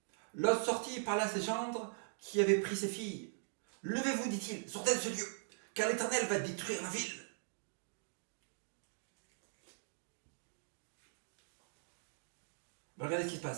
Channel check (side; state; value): left; silent; digital silence